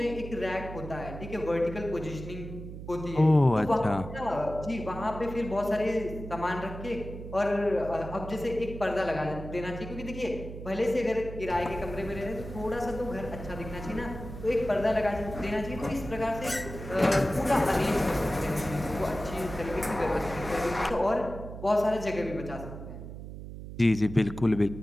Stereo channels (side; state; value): right; noise; hum, 10 dB below the sound